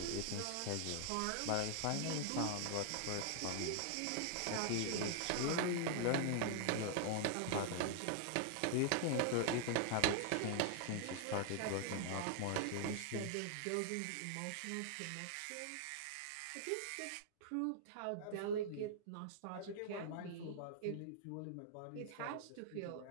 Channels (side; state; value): both; different; correlation -0.01